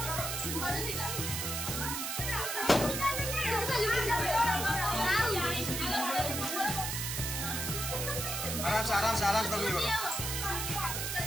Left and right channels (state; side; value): noise; right; hiss, 2 dB below the sound